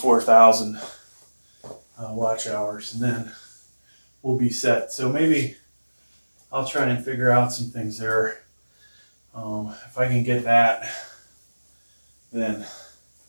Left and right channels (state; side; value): inverted; both; correlation -1.00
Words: watch hours, and then we'll be set. So maybe I'll try and figure out some things there. If I can get that, then